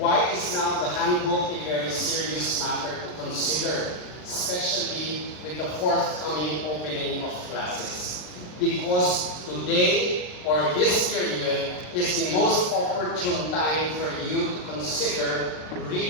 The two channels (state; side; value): late; right; 39 ms